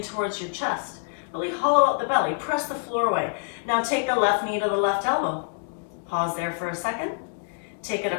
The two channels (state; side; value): silent; right; 59 dB below the other